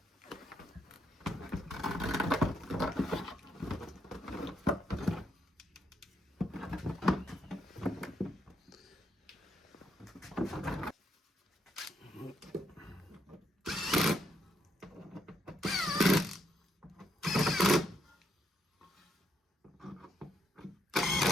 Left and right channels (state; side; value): normal; both; correlation 0.77